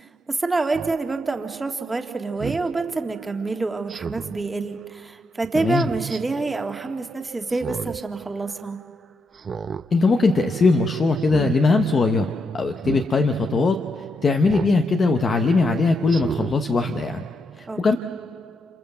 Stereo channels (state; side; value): normal; both; correlation 0.81